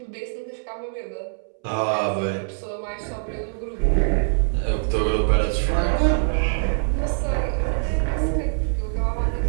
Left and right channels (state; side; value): silent; left; 63 dB below the other